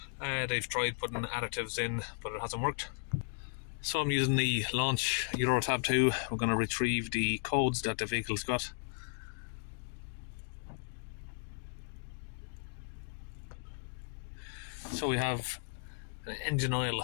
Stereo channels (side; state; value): right; silent; digital silence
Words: they've tried putting additives in but it hasn't worked. So I'm using the Launch Euro Tab 2. We're going to retrieve the codes that the vehicle's got. So we have an engine oil